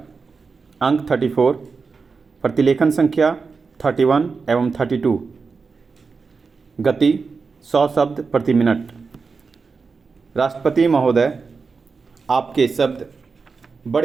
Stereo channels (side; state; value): left; quieter; 4.8 dB